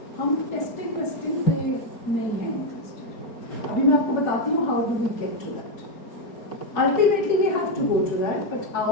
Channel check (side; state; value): right; late; 4.7 ms